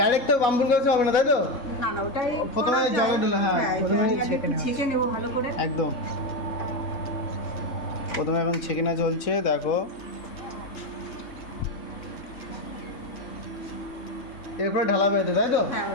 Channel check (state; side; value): late; right; 3.7 ms